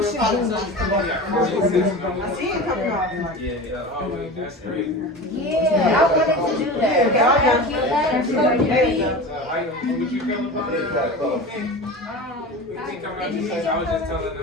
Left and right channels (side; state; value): both; normal; correlation 0.31